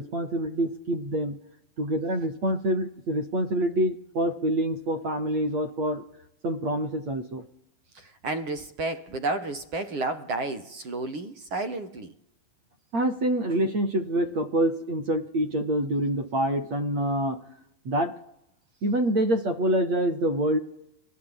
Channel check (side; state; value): left; late; 8.6 ms